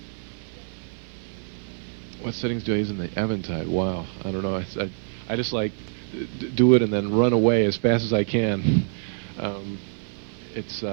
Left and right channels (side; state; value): left; silent; 61 dB below the other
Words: What settings do I use in the Eventide? Wow, I don't know. I just like do it and then run away as fast as I can. It's